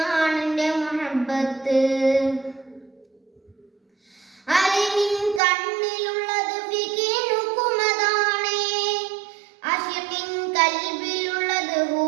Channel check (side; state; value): left; drops out; at 5.4 s